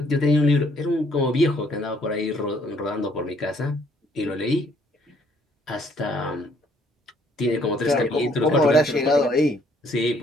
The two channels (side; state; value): both; normal; correlation 0.65